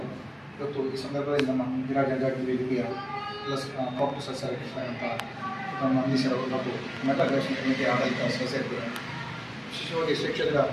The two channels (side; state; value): both; identical; correlation 1.00